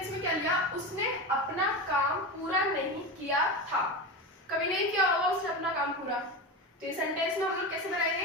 में क्या लिया, उसने अपना काम पूरा नहीं किया था। कभी नहीं किया होगा उसने अपना काम पूरा, तो ये सेंटेंस में हम लोग कैसे बनाएंगे,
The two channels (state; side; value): normal; both; correlation 0.22